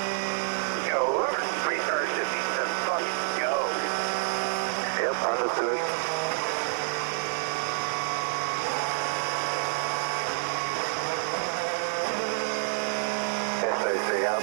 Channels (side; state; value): left; silent; digital silence